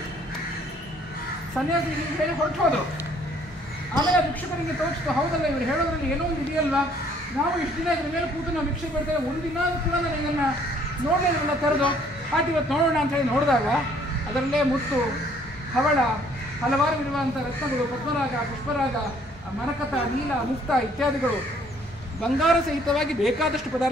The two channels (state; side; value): normal; both; correlation 0.61